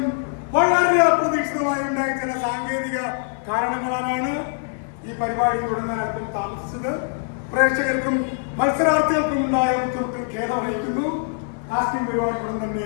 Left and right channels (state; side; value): silent; right; digital silence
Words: വളരെ അപ്രതീക്ഷിതമായി ഉണ്ടായ ചില സാങ്കേതിക കാരണങ്ങളാണ് ഈ പരിപാടി തുടങ്ങാൻ അല്പം താമസിച്ചത്. പ്രേക്ഷകർക്കും മത്സരാർത്ഥികൾക്കും ഉണ്ടായ ബുദ്ധിമുട്ടിൽ ഖേദം അറിയിക്കുന്നു. കാസ്റ്റിംഗ് പരിപാടി ഉടൻ തന്നെ